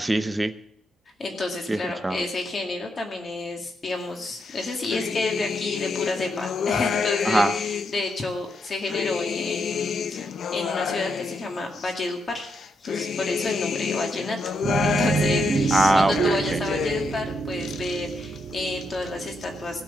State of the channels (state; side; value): normal; both; correlation 0.80